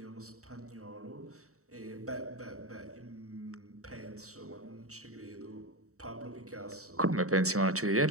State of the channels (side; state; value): left; late; 0.65 ms